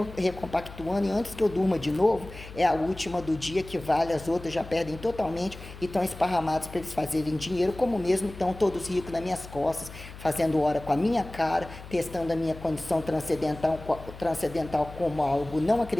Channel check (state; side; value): noise; left; hum, 15 dB below the sound